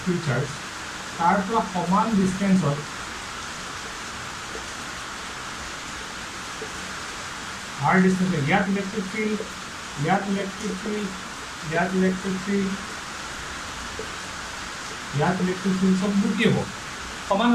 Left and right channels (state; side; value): identical; both; correlation 1.00